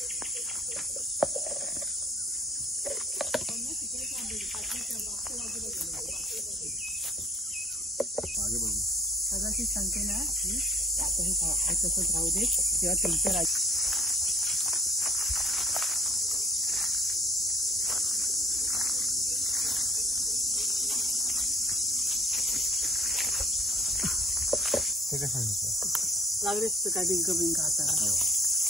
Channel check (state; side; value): normal; both; correlation 0.52